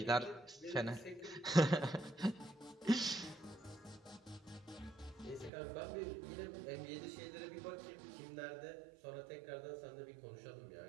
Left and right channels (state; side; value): drops out; left; at 5.5 s